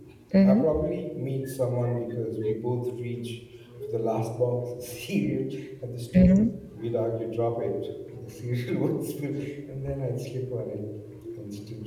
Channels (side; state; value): both; identical; correlation 1.00